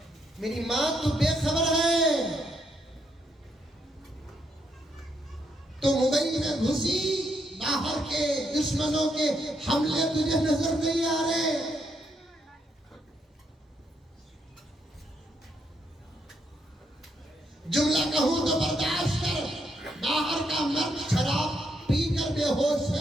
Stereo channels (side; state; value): both; normal; correlation 0.77